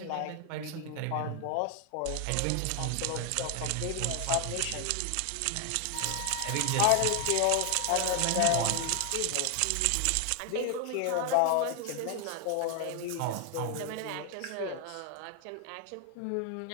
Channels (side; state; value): both; different; correlation 0.00